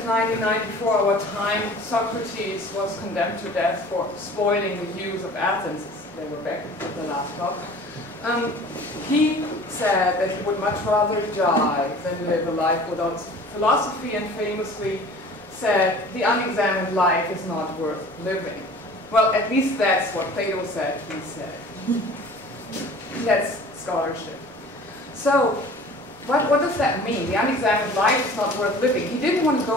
before our time, Socrates was condemned to death for spoiling the use of Athens, they were back at the last talk, he said that he would much rather die than live a life without philosophy, and famously said, the unexamined life is not worth living. Well, at least that's what Plato said, he said. That's scholarship. So, what does that mean? The unexamined life is not worth living. He didn't want to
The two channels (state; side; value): normal; both; correlation 0.45